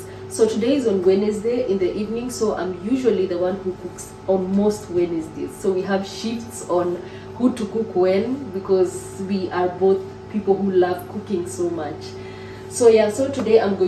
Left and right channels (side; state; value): both; identical; correlation 1.00